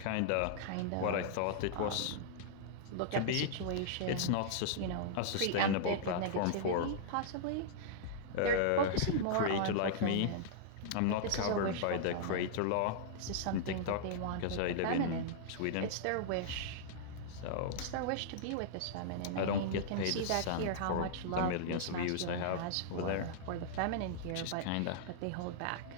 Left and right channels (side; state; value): both; different; correlation -0.02